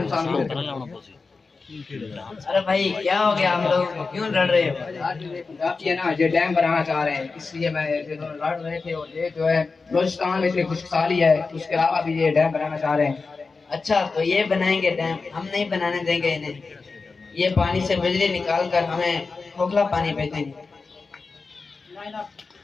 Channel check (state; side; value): quieter; right; 4.3 dB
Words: को। अरे भाई क्या हो गया, हम लोग क्यों लड़ रहे हो? आप ये ना ये डैम बनाना चाह रहे हैं, इसलिए मैं लड़ रहे थे। और ये जो है बलोचिस्तान में इतनी खुशहाली है, उसके अलावा भी ये डैम बनाना चाह रहे हैं। अच्छा तो ये बनाएंगे डैम, हम नहीं बनाने देंगे इन्हें। ये पानी से बिजली निकाल कर हमें खोखला पानी बेचेंगे।